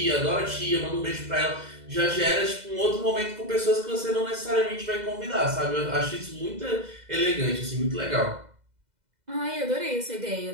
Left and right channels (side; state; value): left; late; 2.0 ms